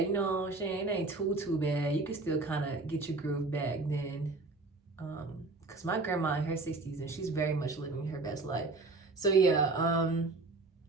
You know what I'm saying? It ain't too bad. You can still kind of get your groove back then. Because my grandma in her 60s and she's very much living her best life. So yeah,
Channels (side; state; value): left; quieter; 3.5 dB